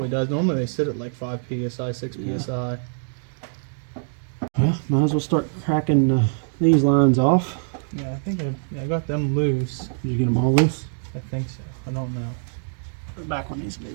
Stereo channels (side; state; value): left; silent; digital silence